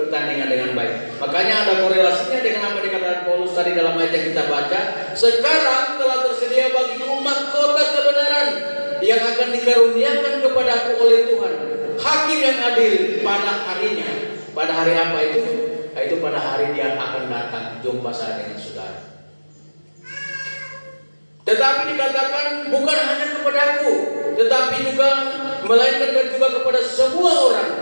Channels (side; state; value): both; inverted; correlation -1.00